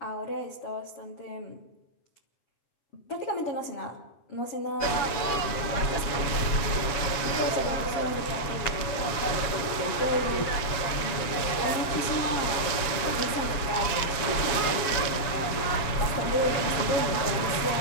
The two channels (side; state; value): right; late; 7.2 ms